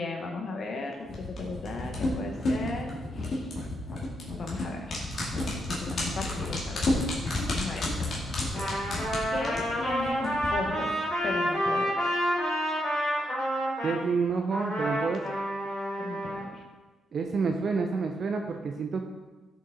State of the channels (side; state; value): both; normal; correlation 0.80